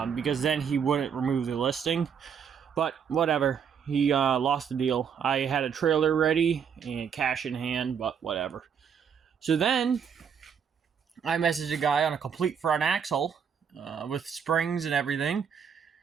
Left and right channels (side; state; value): left; quieter; 7.3 dB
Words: because then he wouldn't remove the listing. But whatever. He lost the deal. I had a trailer ready and cash in hand, but whatever. So then I messaged a guy on a complete front axle with springs and everything.